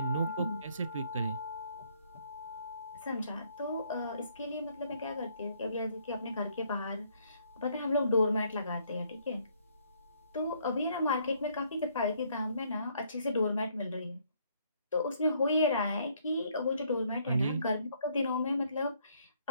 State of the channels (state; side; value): inverted; both; correlation -0.67